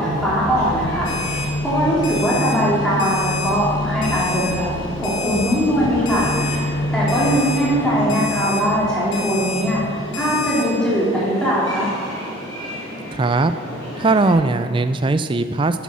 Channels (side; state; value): both; normal; correlation 0.50